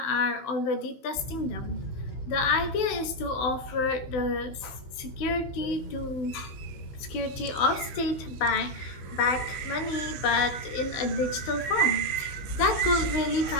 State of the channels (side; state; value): right; late; 15 ms